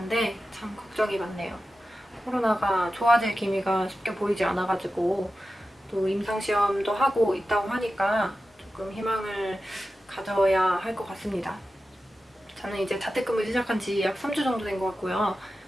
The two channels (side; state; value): both; normal; correlation 0.93